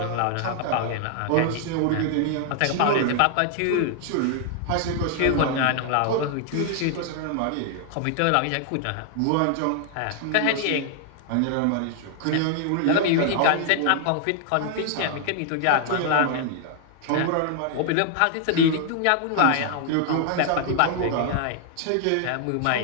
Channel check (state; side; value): different; both; correlation 0.00